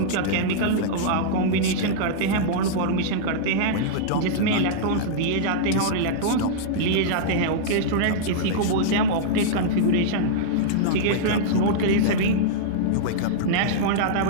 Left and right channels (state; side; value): different; both; correlation -0.02